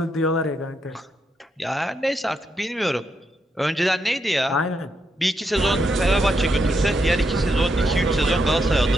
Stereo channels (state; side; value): normal; both; correlation 0.80